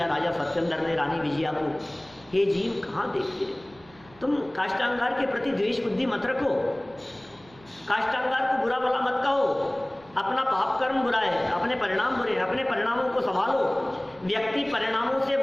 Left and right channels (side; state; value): right; noise; hum, 25 dB below the sound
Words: राजा सत्येंद्र ने रानी विजया को। हे जीव, कहाँ देखते हो तुम, काष्टांगार के प्रति द्वेष बुद्धि मत रखो, काष्टांगार को बुरा भला मत कहो। अपना पाप कर्म बुरा है, अपने परिणाम बुरे हैं, अपने परिणामों को संभालो। व्यक्ति परिणामों से